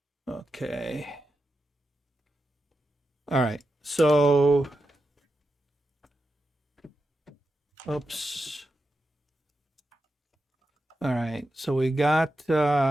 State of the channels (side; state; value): both; normal; correlation 0.89